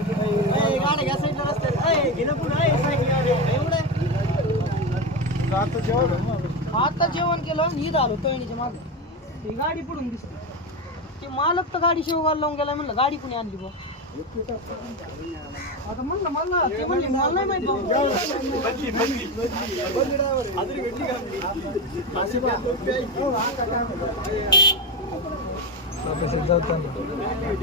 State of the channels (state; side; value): normal; both; correlation 0.16